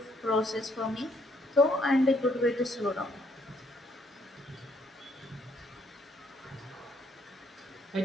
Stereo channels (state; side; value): normal; both; correlation 0.69